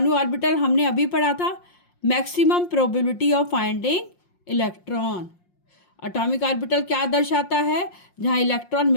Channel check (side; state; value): right; late; 5.6 ms